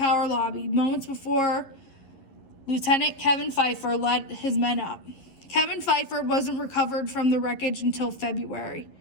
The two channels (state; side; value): late; right; 11 ms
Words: lobby, moments before Lieutenant Kevin Pfeiffer led his men up. Kevin Pfeiffer wasn't recovered from the wreckage until February.